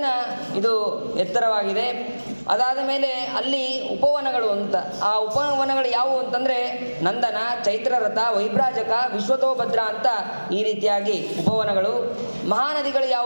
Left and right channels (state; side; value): inverted; both; correlation -1.00